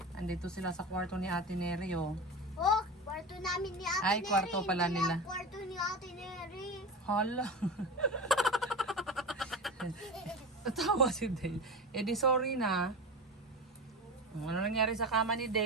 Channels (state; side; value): normal; both; correlation 0.26